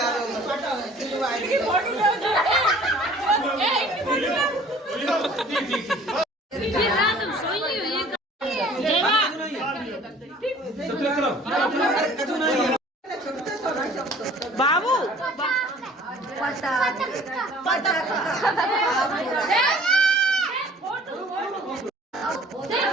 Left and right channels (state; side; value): normal; both; correlation 0.51